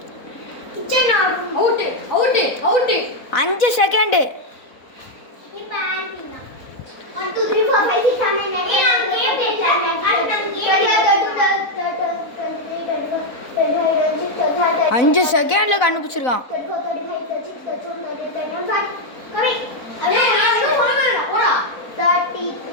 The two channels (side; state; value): right; late; 4.0 ms